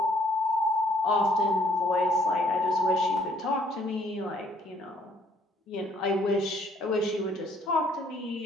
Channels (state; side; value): normal; both; correlation 0.63